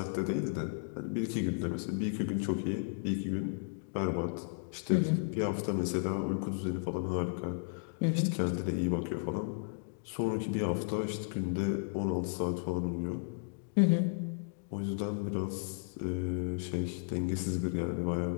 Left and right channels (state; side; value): silent; right; digital silence